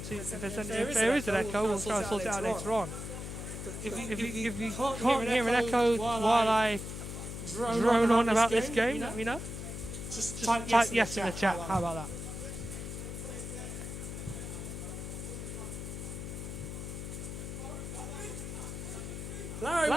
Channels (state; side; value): noise; left; hum, 7 dB below the sound